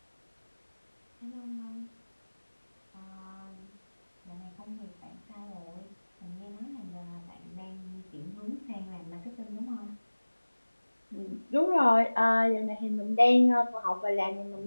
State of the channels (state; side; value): inverted; both; correlation -1.00